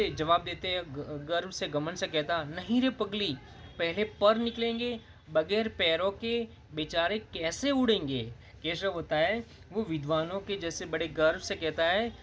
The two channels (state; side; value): identical; both; correlation 1.00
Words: जवाब देते हैं, गर्व से घमंड से कहता, नहीं रे पगली, पहले पर निकलेंगे, बगैर पैरों के बेचारे कैसे उड़ेंगे। केशव होता है वो विद्वानों के जैसे बड़े गर्व से कहता है,